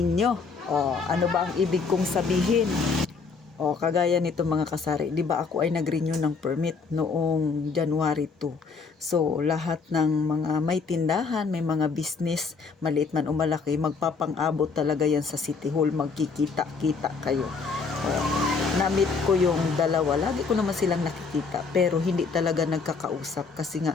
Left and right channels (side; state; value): right; quieter; 4.9 dB